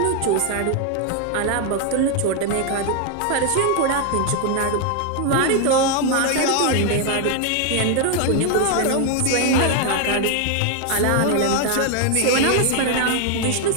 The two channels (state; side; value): different; both; correlation 0.00